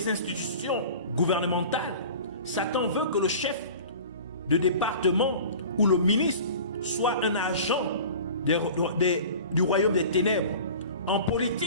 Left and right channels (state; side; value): inverted; both; correlation -0.40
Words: institutions gouvernementales, Satan veut que le chef de département ou le ministre soit un agent du royaume des ténèbres. En